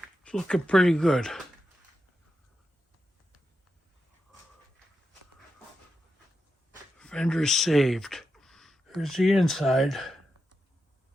It's looking pretty good. Fender is saved. Here's the inside.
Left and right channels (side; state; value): both; normal; correlation 0.88